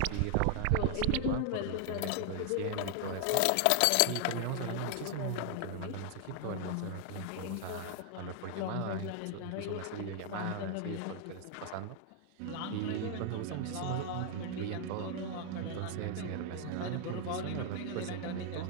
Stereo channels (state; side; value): different; both; correlation 0.00